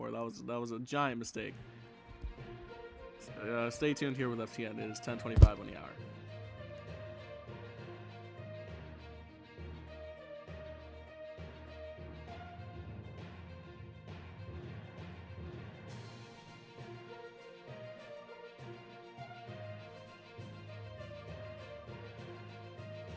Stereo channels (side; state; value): both; identical; correlation 1.00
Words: That was a giant mistake. Stay tuned here with FTN. It is 10:25 on the hour.